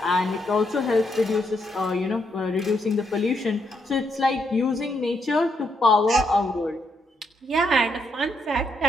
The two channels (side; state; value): both; normal; correlation 0.77